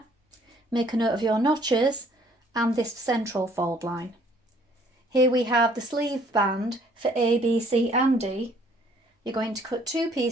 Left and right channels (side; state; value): both; normal; correlation 0.60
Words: Make a note of your notches and this central fold line. Here we have the sleeve band for A, B, C and D. You're going to cut 2